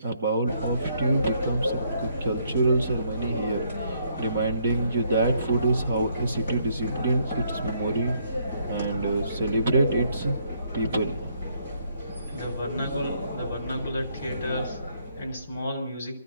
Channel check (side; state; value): both; inverted; correlation -0.70